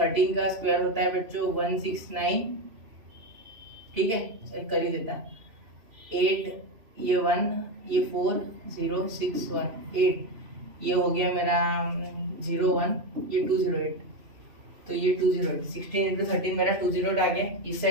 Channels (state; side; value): late; left; 2.9 ms